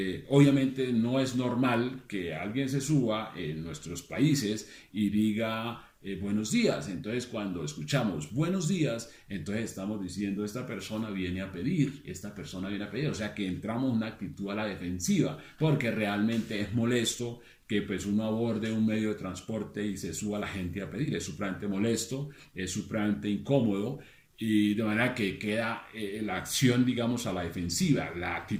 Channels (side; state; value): both; identical; correlation 1.00